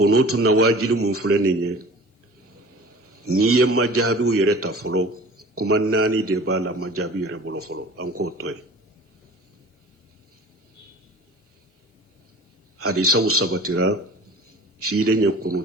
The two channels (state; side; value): normal; both; correlation 0.43